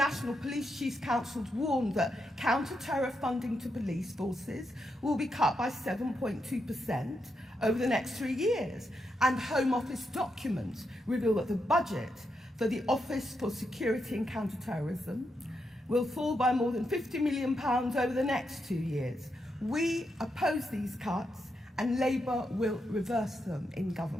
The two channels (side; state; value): both; normal; correlation 0.83